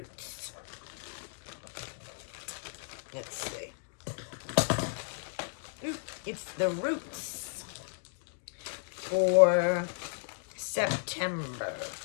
Let's see. Ooh, it's the Roots for September.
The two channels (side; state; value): right; silent; digital silence